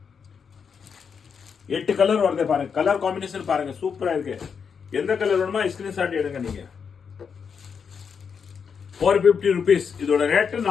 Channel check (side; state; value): right; quieter; 6.4 dB